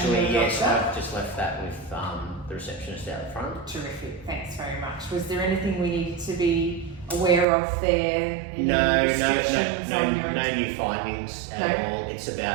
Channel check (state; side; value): drops out; left; at 7.5 s